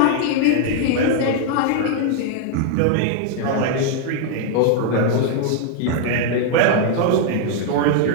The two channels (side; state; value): both; different; correlation 0.00